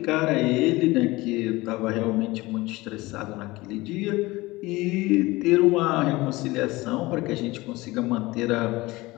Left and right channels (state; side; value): quieter; right; 20.7 dB